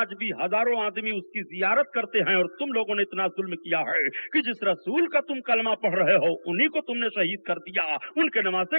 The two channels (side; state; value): both; inverted; correlation -1.00